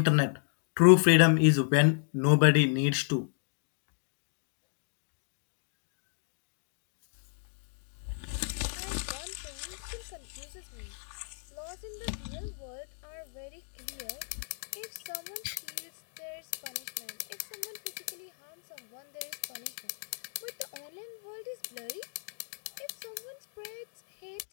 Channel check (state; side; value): silent; right; 56 dB below the other